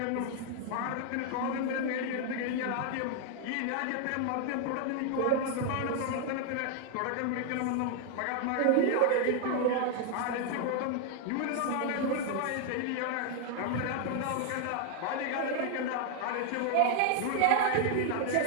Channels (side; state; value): both; different; correlation 0.00